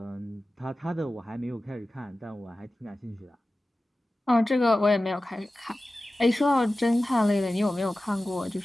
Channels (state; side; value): normal; both; correlation 0.95